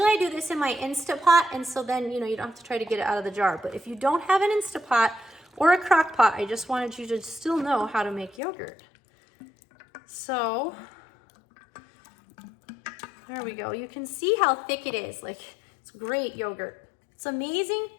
I do this in my Instapot, and so then, you know, you don't have to try to get it out of the jar. But if you don't have an Instapot or a crock pot, I just wanted you to still know how to make yogurt. So there we go. You can see how thick it is. Like, it's great yogurt. It's amazing,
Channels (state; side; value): drops out; right; at 8.4 s